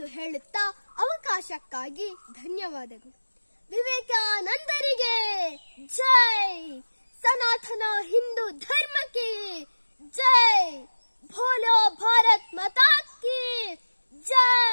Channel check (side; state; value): both; inverted; correlation -1.00